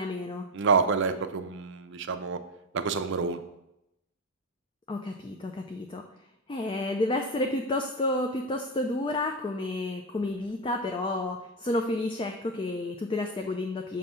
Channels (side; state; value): both; normal; correlation 0.13